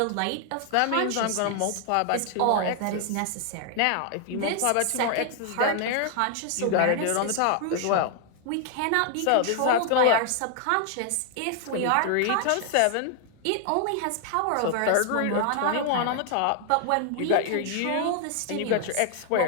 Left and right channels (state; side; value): different; both; correlation 0.00